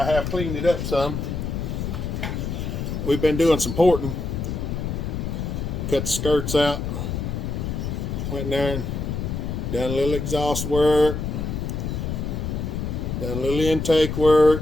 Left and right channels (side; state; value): left; noise; rumble, 3 dB below the sound